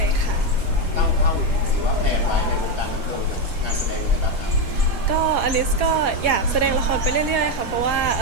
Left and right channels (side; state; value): left; late; 5.0 ms